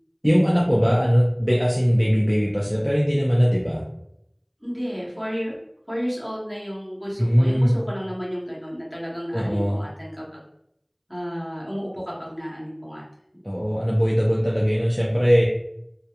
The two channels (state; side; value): identical; both; correlation 1.00